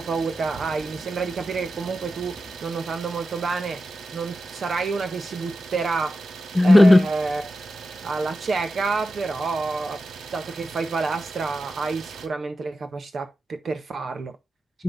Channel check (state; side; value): normal; both; correlation 0.91